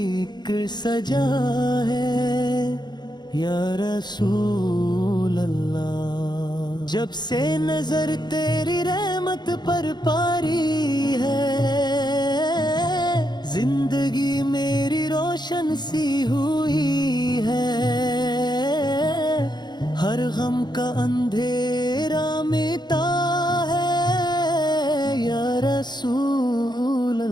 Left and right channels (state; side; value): late; right; 0.21 ms